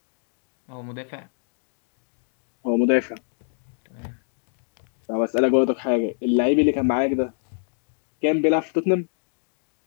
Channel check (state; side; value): silent; right; digital silence